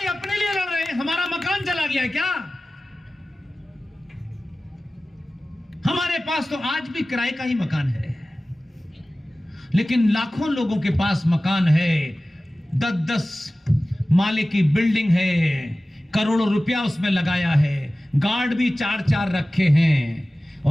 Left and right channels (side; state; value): both; normal; correlation 0.96